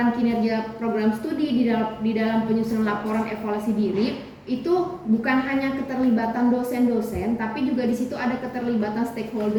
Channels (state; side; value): identical; both; correlation 1.00